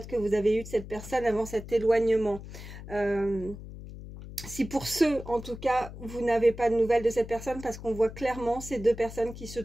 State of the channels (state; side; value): noise; left; hum, 13 dB below the sound